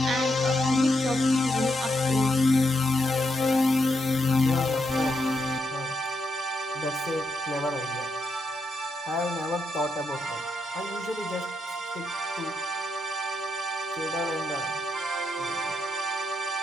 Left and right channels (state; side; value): normal; both; correlation 0.81